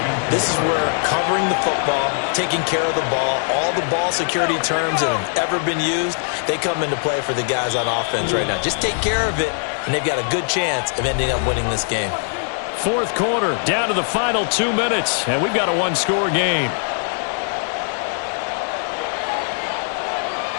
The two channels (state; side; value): silent; right; 61 dB below the other